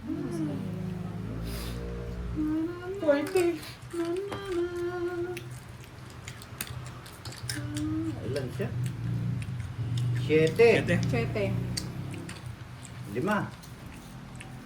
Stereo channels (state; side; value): identical; both; correlation 1.00